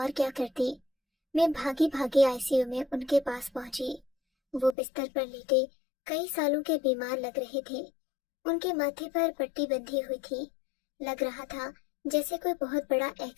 کیا کرتی۔ میں بھاگی بھاگی ICU میں ان کے پاس پہنچی۔ وہ بستر پر لیٹے کئی سالوں کے بیمار لگ رہے تھے۔ ان کے ماتھے پر پٹی بندھی ہوئی تھی۔ لگ رہا تھا جیسے کوئی بہت بڑا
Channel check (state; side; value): drops out; right; at 4.8 s